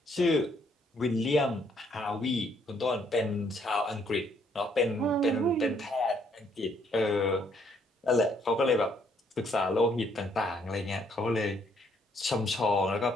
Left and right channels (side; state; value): both; normal; correlation 0.68